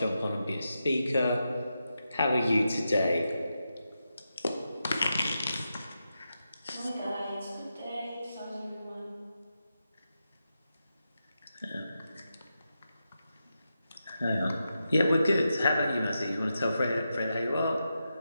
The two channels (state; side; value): inverted; both; correlation -0.88